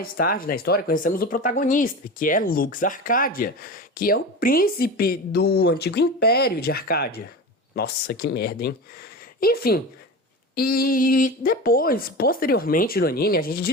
tarde na história, conhecemos o protagonista, que é Lux Arcadia, que é o príncipe do antigo Império de Arcádia. Nossa, que merda, hein? Enfim, e depois, posteriormente no anime, a gente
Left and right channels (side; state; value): both; normal; correlation 0.28